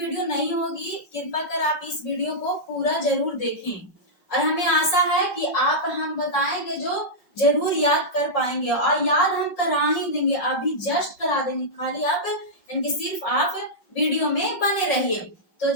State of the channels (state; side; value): late; right; 5.5 ms